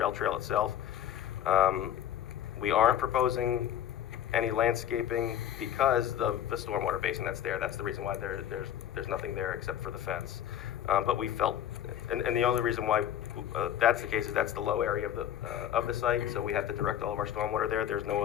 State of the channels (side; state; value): right; quieter; 10.6 dB